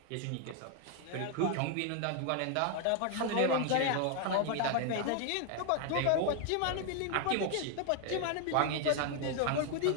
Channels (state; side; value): different; both; correlation 0.00